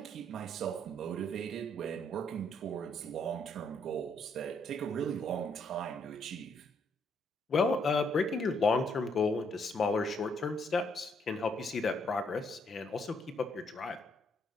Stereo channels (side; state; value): both; normal; correlation 0.71